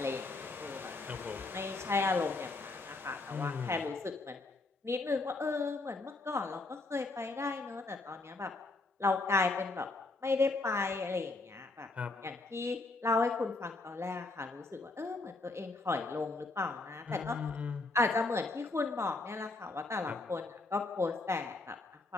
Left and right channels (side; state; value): right; quieter; 3.4 dB